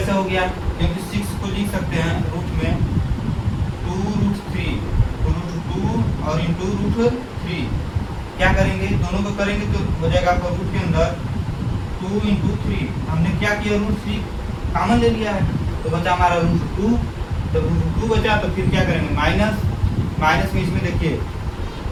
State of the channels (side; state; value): both; identical; correlation 1.00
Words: हो गया, क्योंकि 6 को लिख सकते हैं रूट में 2√3 √2 और इंटू √3, क्या करेंगे दोनों को करेंगे तो हो जाएगा आपका रूट के अंदर 2 इंटू 3, हमने क्या किया √3 कॉमन ले लिया है तो बचा हमारा √2, जब √2 बचा तो फिर क्या करेंगे माइनस में इसमें देखिए